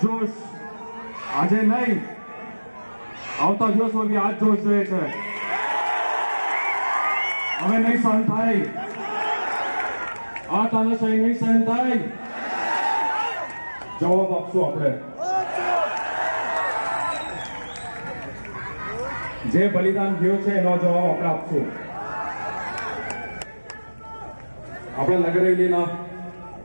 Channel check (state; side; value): inverted; both; correlation -1.00